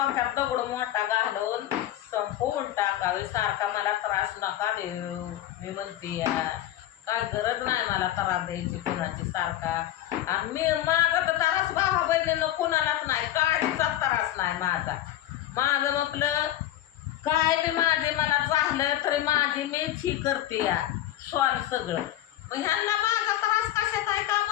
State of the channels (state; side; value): quieter; right; 13.1 dB